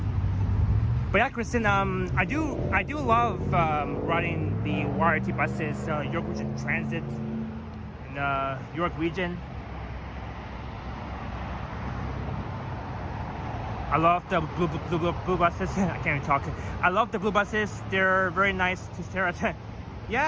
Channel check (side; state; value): both; identical; correlation 1.00